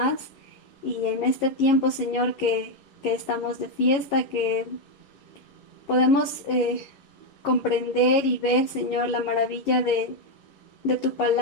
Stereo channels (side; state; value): right; late; 11 ms